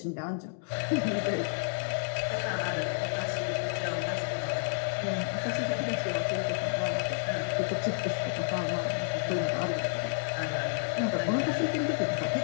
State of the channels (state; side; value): silent; right; digital silence